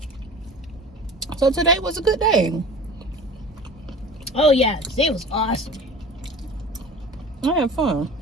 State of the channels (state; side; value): normal; both; correlation 0.39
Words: So today was a good day. Oh yeah, today was awesome. I had fun.